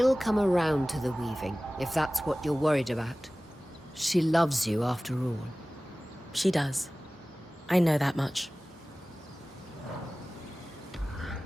come around to the weaving, if that's what you're worried about. She loves you, after all. She does. I know that much.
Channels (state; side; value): normal; both; correlation 0.98